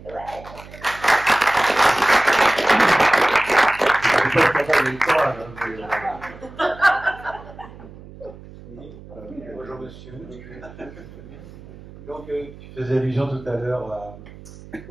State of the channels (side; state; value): right; noise; hum, 18 dB below the sound